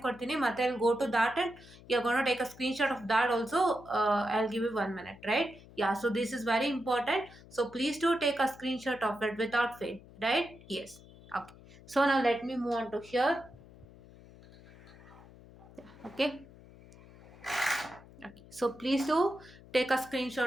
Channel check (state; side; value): noise; left; hum, 21 dB below the sound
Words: ಕೊಡ್ತೀನಿ, ಮತ್ತೆ I go to that and you are going to take a screen shot of that also. I will give you 1 minute, right? Yeah, so this is very important, so please do take a screenshot of it without fail, right? Yes. Okay, so now let me move on to here. Okay. Okay, so please do take a